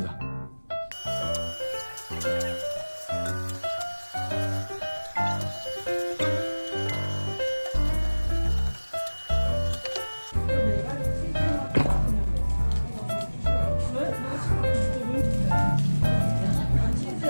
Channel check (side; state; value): both; inverted; correlation -1.00